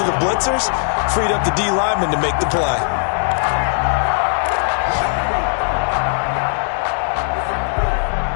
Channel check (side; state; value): right; silent; digital silence